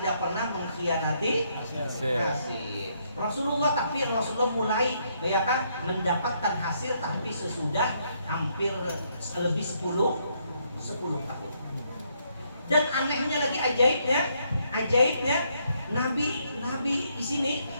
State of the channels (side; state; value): both; inverted; correlation -0.73